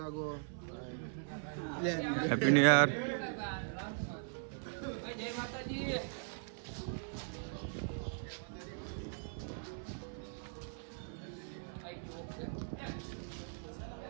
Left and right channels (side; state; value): left; silent; 51 dB below the other